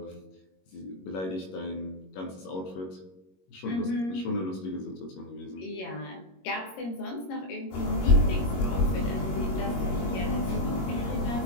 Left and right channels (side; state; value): right; late; 21 ms